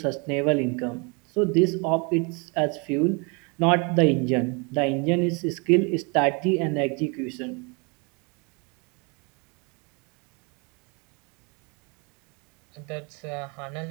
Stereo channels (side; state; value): left; quieter; 31.8 dB